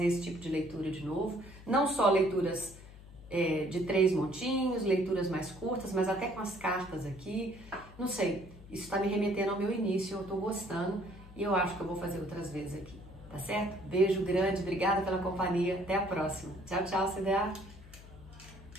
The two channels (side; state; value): left; noise; hum, 18 dB below the sound